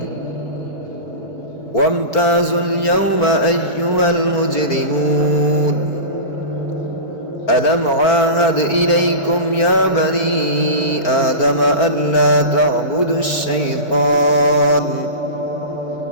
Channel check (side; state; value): right; late; 4.8 ms